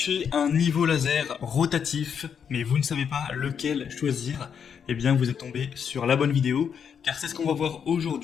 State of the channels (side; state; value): right; quieter; 7.4 dB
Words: un niveau laser rotatif, mais vous ne savez pas lequel choisir, eh bien vous êtes tombé sur la bonne vidéo, car c'est ce qu'on va voir